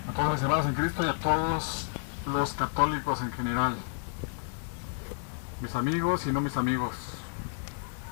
a todos mis hermanos en Cristo y a todos los católicos en general, mis amigos y no mis amigos.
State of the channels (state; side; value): silent; right; digital silence